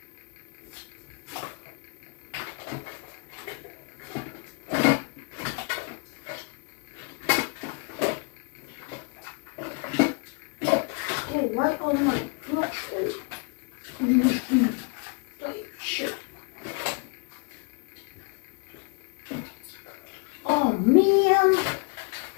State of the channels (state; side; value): quieter; right; 34.4 dB